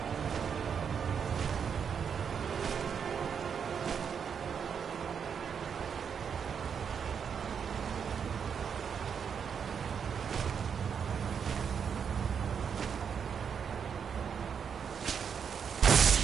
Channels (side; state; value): left; quieter; 7.1 dB